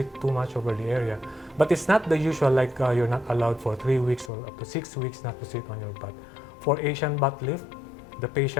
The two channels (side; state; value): right; drops out; at 4.3 s